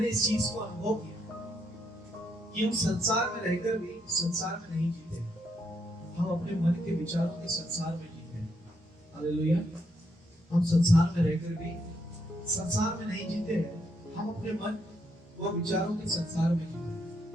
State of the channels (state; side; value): normal; both; correlation 0.76